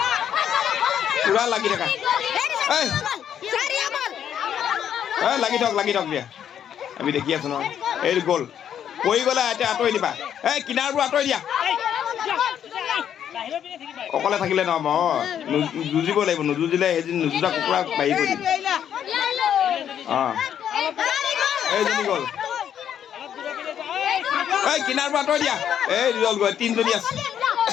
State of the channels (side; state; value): right; quieter; 9.3 dB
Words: পুৰা লাগি থাকা লাগি থাক দিয়া আমি দেখি আছো নহয় এই গ'ল পৰি গ'লে এতিয়া আঁতৰি দিবা এই কিনাৰবোৰ আঁতৰি দিয়া অকলে থাকিলে নহ'ব যুঁজিব লাগিব নুযুঁজিলে সেইদিন নুযুঁজা কুকুৰা বাঢ়ি কৰি দিম এইজনী গ'ল এই কিনাৰবোৰ আঁতৰি দিয়া এই গ'ল গৈ তিনিজনী